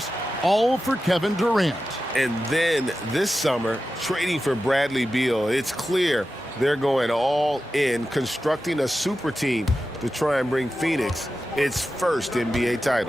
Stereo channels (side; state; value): both; normal; correlation 0.92